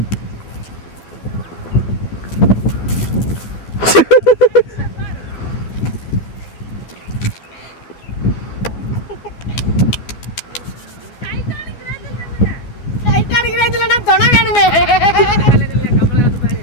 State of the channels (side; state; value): right; late; 12 ms